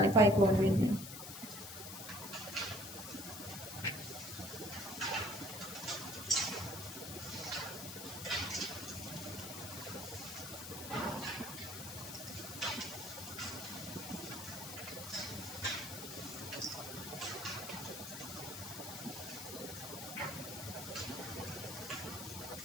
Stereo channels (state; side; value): noise; left; hiss, 8 dB below the sound